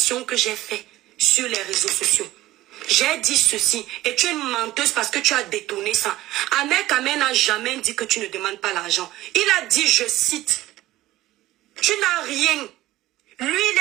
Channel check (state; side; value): quieter; left; 16.2 dB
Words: que j'ai faites sur les réseaux sociaux. J'ai dit ceci et tu es une menteuse parce que tu as détourné ça. Ahmed n'a jamais dit que tu ne demandes pas l'argent. Il a dit, je cite, tu n'as rien. Lui, il